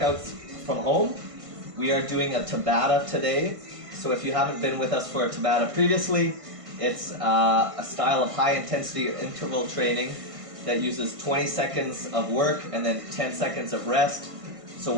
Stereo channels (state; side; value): late; left; 1.5 ms